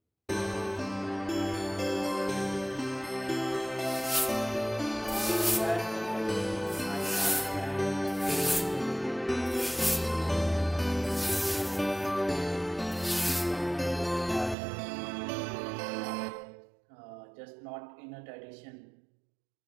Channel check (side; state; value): left; drops out; at 14.6 s